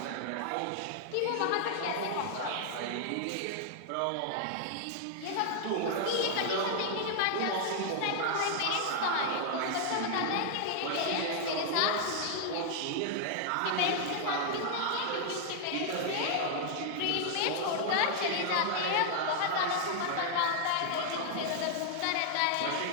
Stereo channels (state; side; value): different; both; correlation 0.00